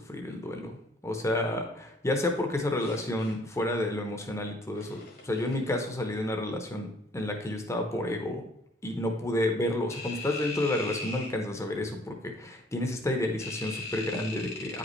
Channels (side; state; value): both; normal; correlation 0.59